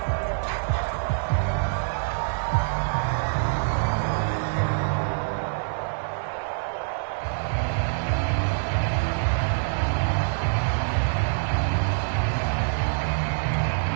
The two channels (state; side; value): silent; left; 61 dB below the other